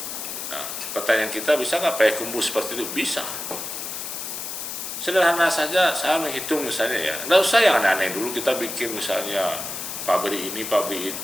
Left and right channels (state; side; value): noise; left; hiss, 6 dB below the sound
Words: Nah, pertanyaan kita, bisa nggak Payakumbuh seperti itu? Bisa. Sederhana saja, saya menghitung misalnya ya, nggak usah yang aneh-aneh dulu kita bikin misalnya pabrik ini, pabrik